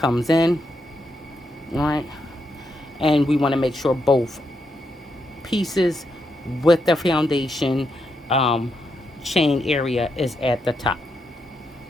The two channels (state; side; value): normal; both; correlation 0.81